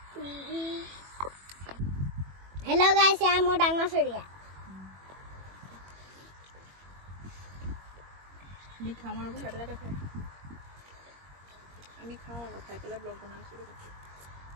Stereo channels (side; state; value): left; late; 21 ms